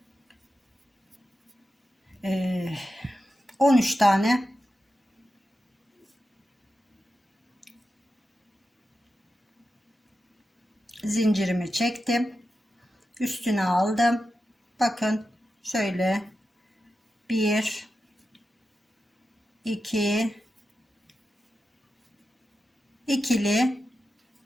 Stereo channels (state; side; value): normal; both; correlation 0.90